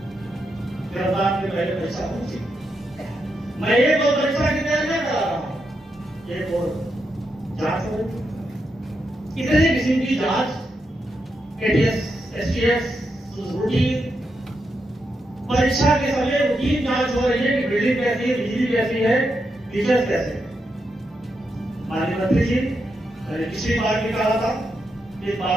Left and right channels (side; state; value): both; normal; correlation 0.84